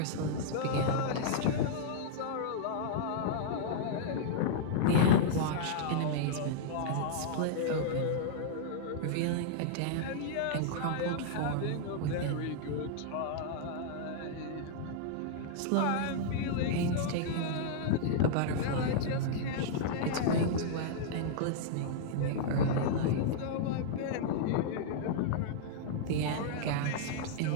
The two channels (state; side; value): different; both; correlation -0.02